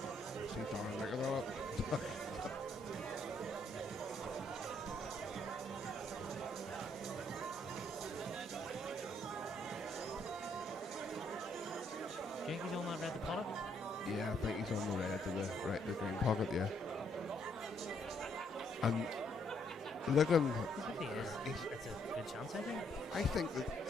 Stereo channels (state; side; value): normal; both; correlation 0.71